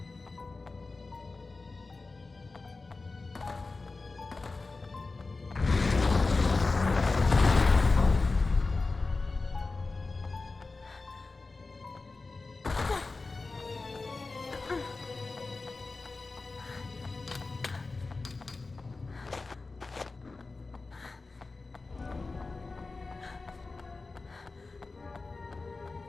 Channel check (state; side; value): quieter; right; 3.7 dB